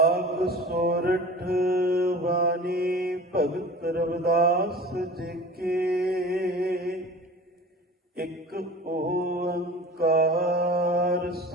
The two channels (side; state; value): both; normal; correlation 0.39